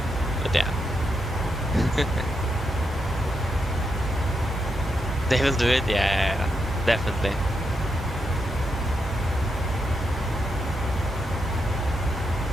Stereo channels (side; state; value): both; normal; correlation 0.83